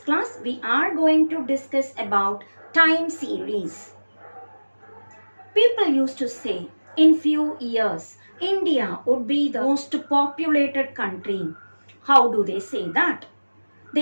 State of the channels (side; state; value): both; inverted; correlation -1.00